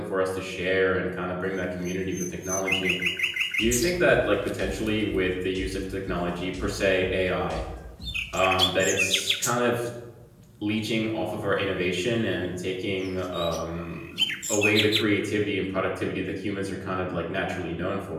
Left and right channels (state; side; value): identical; both; correlation 1.00